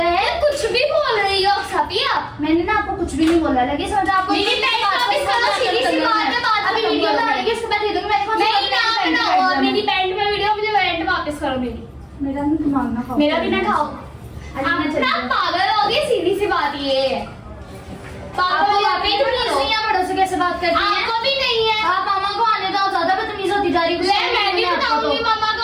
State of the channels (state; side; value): identical; both; correlation 1.00